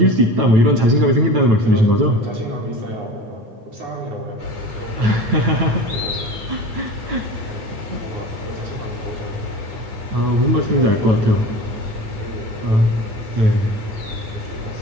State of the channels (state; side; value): late; left; 9.1 ms